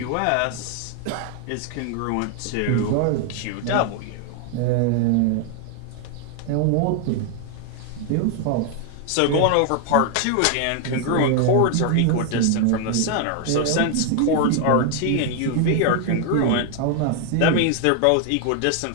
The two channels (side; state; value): both; different; correlation 0.00